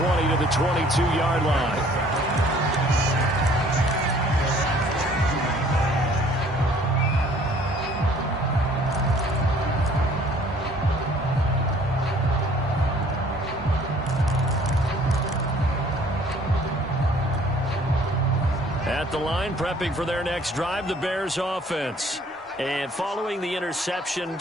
to the 22-yard line. At the line, prepping for their next drive, the Bears offense. And following the interception,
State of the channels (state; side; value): normal; both; correlation 0.56